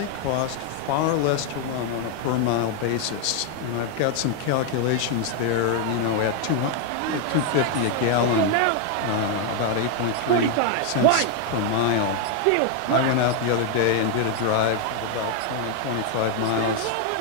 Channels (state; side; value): different; both; correlation 0.00